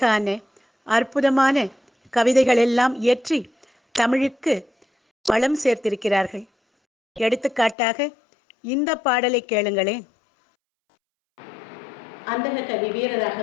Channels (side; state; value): right; drops out; at 7.8 s